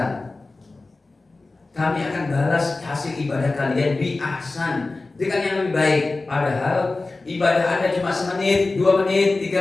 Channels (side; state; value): right; quieter; 3.4 dB